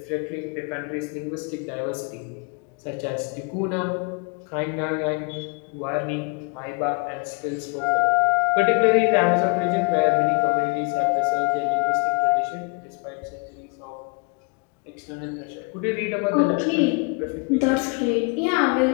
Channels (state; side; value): quieter; right; 33.1 dB